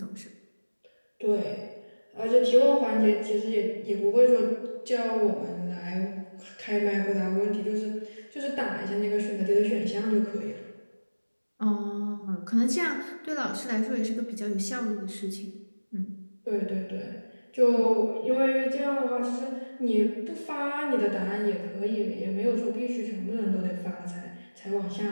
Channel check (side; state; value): both; inverted; correlation -1.00